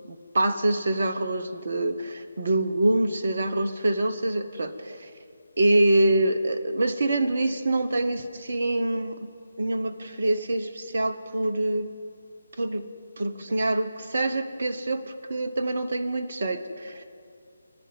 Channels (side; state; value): both; inverted; correlation -0.90